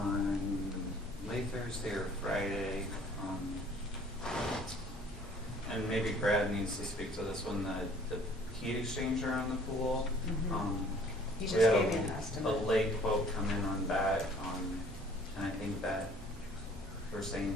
late Thursday or Friday, and maybe Brad needs to speak to this one, the heat exchanger on the pool. You We just had gave me an estimate. a late quote come in on that, and I think that we're saying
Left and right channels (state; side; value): normal; both; correlation 0.55